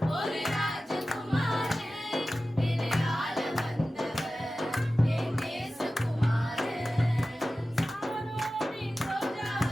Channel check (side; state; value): both; normal; correlation 0.95